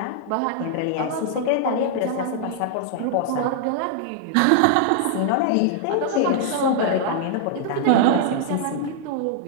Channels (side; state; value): both; different; correlation -0.01